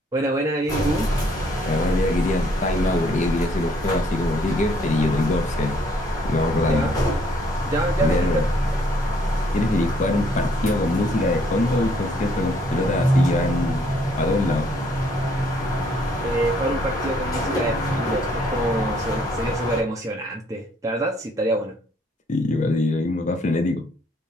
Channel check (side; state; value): both; normal; correlation 0.66